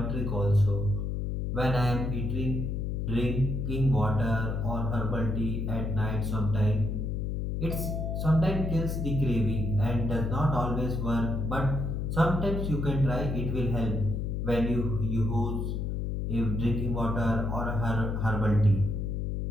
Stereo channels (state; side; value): noise; left; hum, 1 dB below the sound